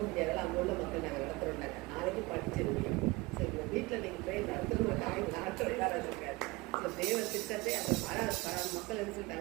முடியாதால அங்கே உள்ள மக்கள் நாங்கள் நடத்துகிறோம்னாங்க. நாளைக்கு படிச்சிருக்கீங்க. ஸோ இந்த வீட்டில் நீங்கள் ப்ரேயர் நடத்துகிறோம் அவங்க நடத்துறதா இருக்காது. ஸோ தேவ திட்டத்தை அந்த மக்கள் என்ன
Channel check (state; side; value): quieter; left; 22.4 dB